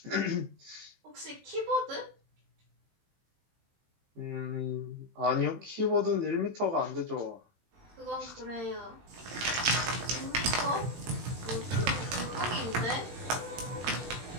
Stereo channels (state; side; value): late; left; 18 ms